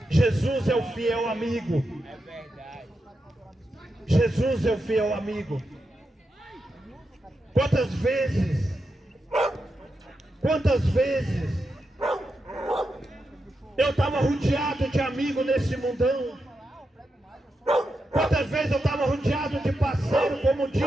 Jesus é o fiel amigo. Jesus é o fiel amigo. Quantas vezes eu estava rodeado de amigos nesse mundão. Quantas vezes eu estava rodeado de parceiro, como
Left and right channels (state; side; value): normal; both; correlation 0.87